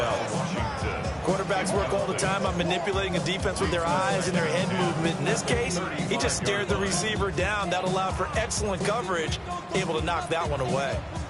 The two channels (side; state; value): both; identical; correlation 1.00